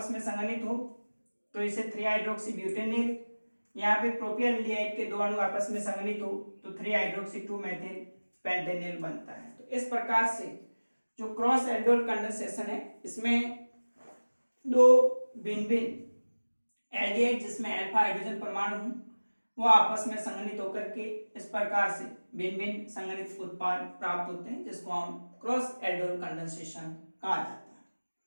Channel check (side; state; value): both; inverted; correlation -1.00